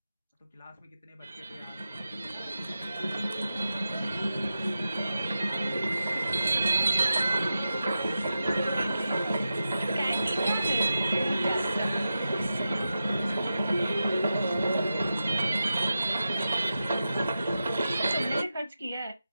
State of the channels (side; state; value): both; inverted; correlation -0.91